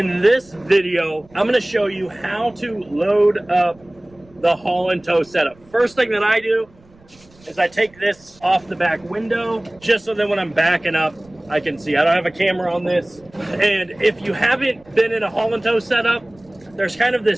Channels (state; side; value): noise; right; rumble, 28 dB below the sound